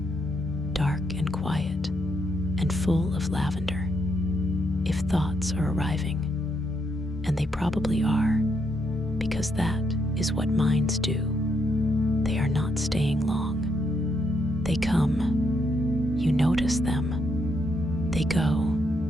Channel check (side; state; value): both; normal; correlation 0.77